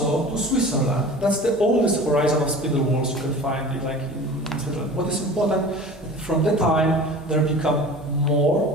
to Switzerland. That's the oldest horizon of spindle wheels you can find like in Switzerland. What is important, from that time, they become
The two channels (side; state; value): both; normal; correlation 0.39